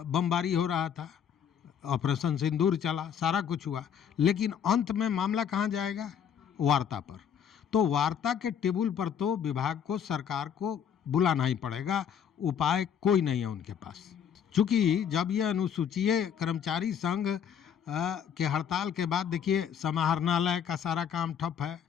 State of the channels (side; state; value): right; quieter; 8.3 dB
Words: बमबारी हो रहा था, ऑपरेशन सिंदूर चला, सारा कुछ हुआ, लेकिन अंत में मामला कहाँ जाएगा? वार्ता पर। तो वार्ता के टेबल पर तो विभाग को, सरकार को बुलाना ही पड़ेगा, उपाय कोई नहीं है उनके पास। चूँकि जब ये अनुसूचित कर्मचारी संघ के हड़ताल के बाद देखिए समाहरणालय का सारा काम ठप है,